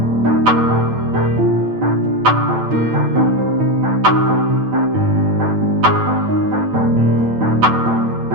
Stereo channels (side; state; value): left; late; 9.0 ms